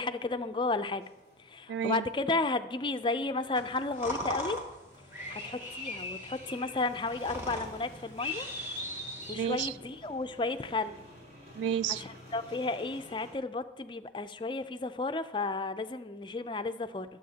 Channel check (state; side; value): normal; both; correlation 0.20